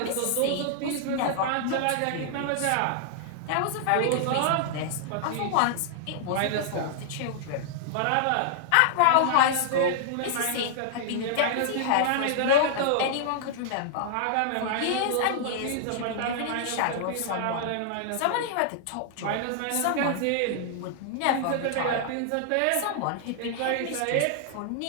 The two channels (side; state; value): both; different; correlation -0.01